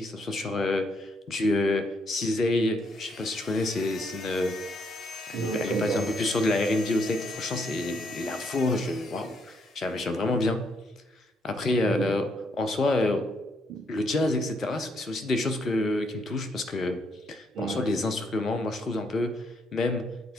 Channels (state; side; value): normal; both; correlation 0.74